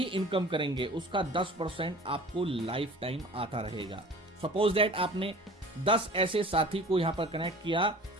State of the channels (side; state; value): both; normal; correlation 0.43